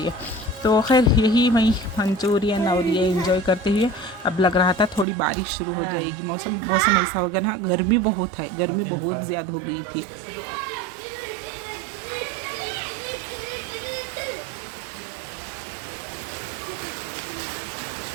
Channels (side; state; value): left; drops out; at 5.1 s